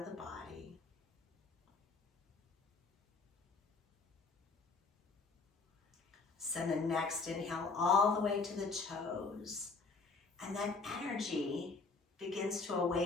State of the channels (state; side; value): quieter; right; 4.2 dB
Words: the body. Send the next inhale all the way to the toes. And that energy begins to